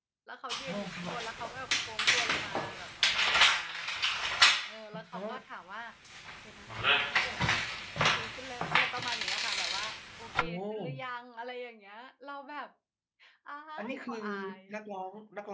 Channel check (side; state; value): both; identical; correlation 1.00